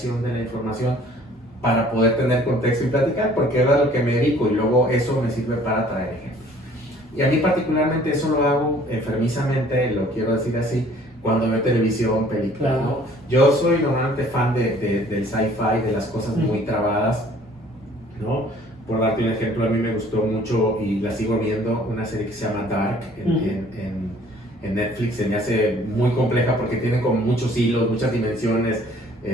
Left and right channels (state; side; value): normal; both; correlation 0.55